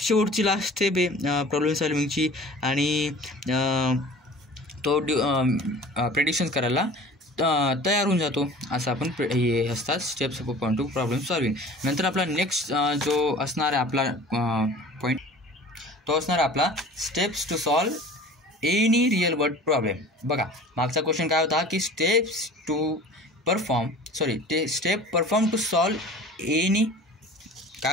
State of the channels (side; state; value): both; normal; correlation 0.43